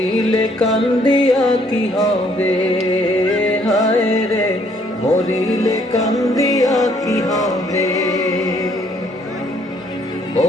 কান্দিয়া কি হবে, হায় রে মরিলে কান্দিয়া কি হবে,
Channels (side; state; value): both; normal; correlation 0.65